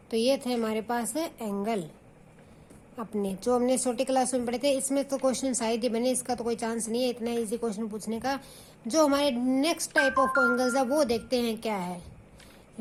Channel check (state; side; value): identical; both; correlation 1.00